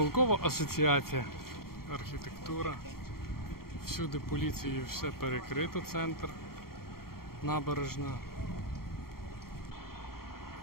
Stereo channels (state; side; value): late; right; 0.93 ms